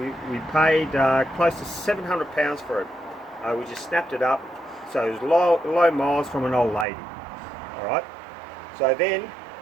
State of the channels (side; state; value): left; drops out; at 6.9 s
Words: paid close to £700 for it. We just snapped it up, so it was low miles from an old lady. All right. So then,